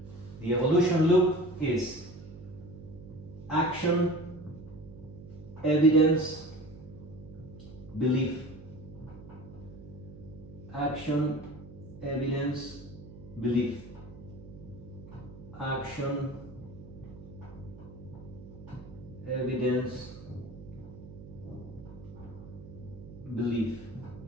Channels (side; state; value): right; noise; hum, 15 dB below the sound